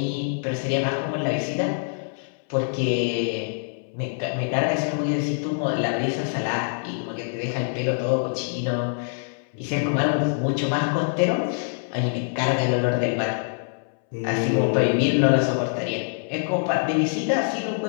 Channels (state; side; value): silent; right; 62 dB below the other